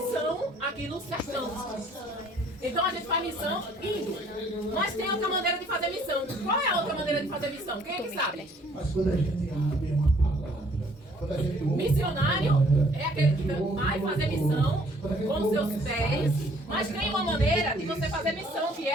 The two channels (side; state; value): both; normal; correlation 0.60